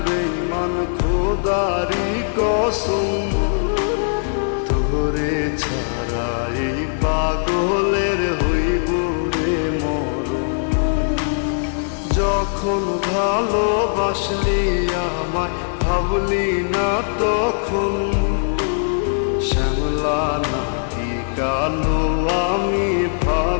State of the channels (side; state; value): right; silent; 63 dB below the other